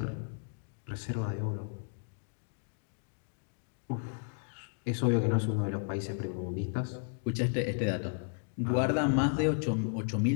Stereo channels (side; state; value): right; silent; digital silence